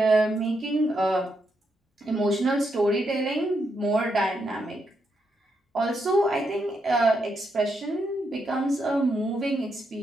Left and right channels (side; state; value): both; normal; correlation 0.81